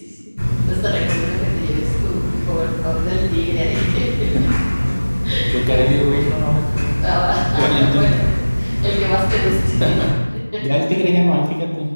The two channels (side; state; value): both; inverted; correlation -1.00